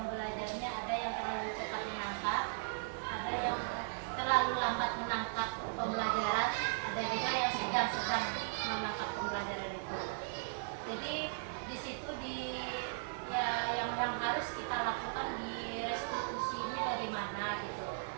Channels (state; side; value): silent; left; digital silence